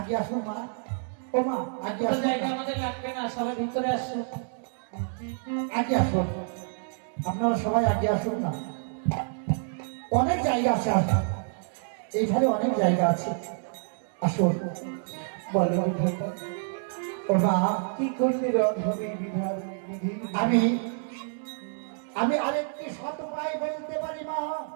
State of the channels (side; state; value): left; silent; digital silence